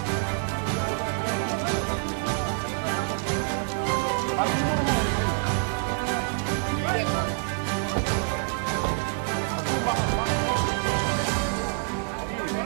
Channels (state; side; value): silent; left; 60 dB below the other